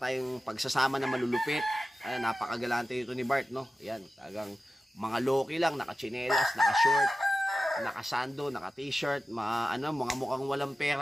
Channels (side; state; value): both; normal; correlation 0.94